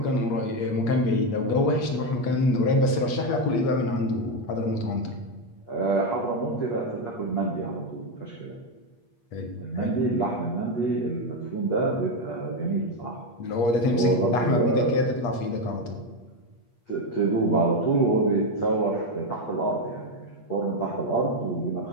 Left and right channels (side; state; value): right; late; 8.4 ms